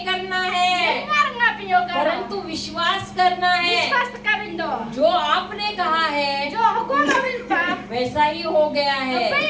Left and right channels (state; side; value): identical; both; correlation 1.00